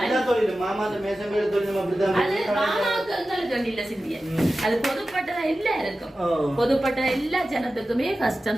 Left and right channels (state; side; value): normal; both; correlation 0.94